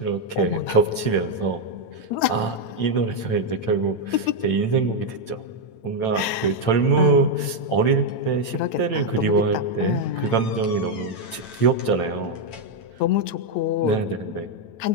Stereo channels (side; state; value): right; late; 9.0 ms